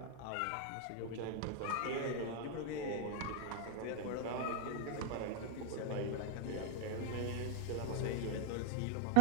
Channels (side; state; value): both; different; correlation 0.00